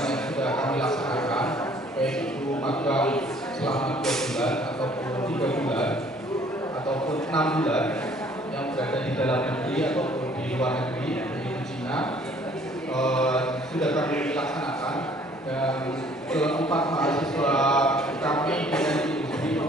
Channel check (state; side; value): normal; both; correlation 0.58